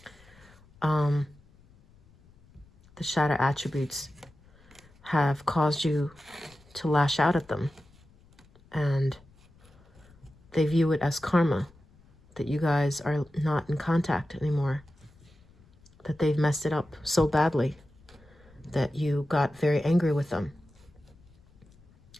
The shadow attributes have caused you to lash out at them, and they view it as karma, that you guys are not in contact anymore, that they've messed it up so badly that you got very angry with them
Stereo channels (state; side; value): noise; left; rumble, 28 dB below the sound